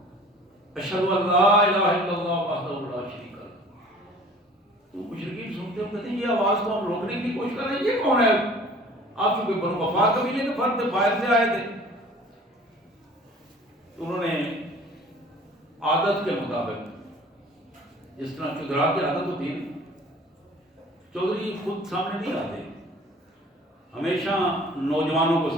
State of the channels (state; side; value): normal; both; correlation 0.48